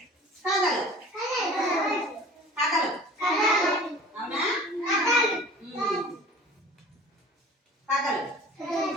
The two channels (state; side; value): normal; both; correlation 0.44